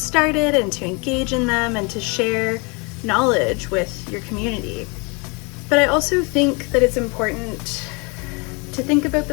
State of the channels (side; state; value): right; quieter; 30.3 dB